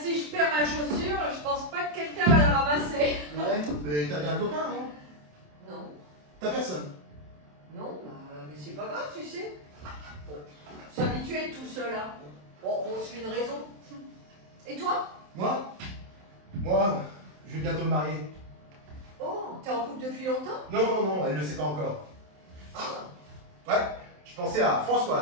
je perds ma chaussure, je pense pas que quelqu'un va la ramasser. Ouais, mais t'as bien un copain, non? Non. T'as personne? Non, mais c'est pas grave, tu sais. Bon, s'habituer à être tout seul, hein. Bon, on se fait une raison. Et toi? Moi, je vais bientôt me marier. Oh, t'es en couple depuis longtemps? Non, elle ne le sait pas encore. Ouais, je pensais à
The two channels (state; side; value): late; left; 27 ms